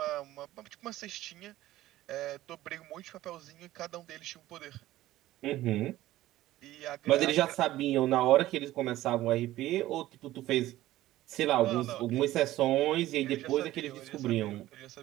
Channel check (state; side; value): quieter; left; 15.4 dB